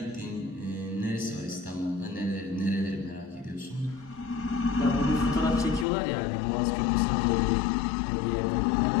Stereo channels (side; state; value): right; drops out; at 5.9 s